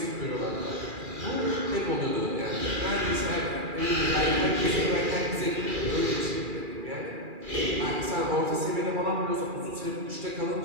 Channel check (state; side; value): late; left; 2.4 ms